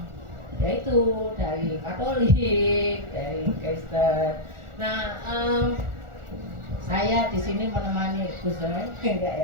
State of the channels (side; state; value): left; late; 1.4 ms